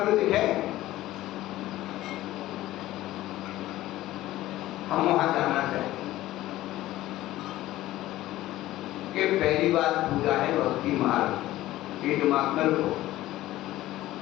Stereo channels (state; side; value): quieter; right; 15.7 dB